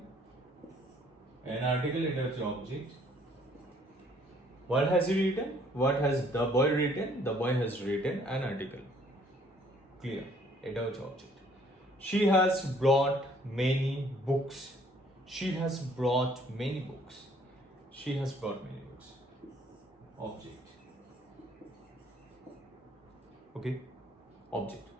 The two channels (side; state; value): both; normal; correlation 0.61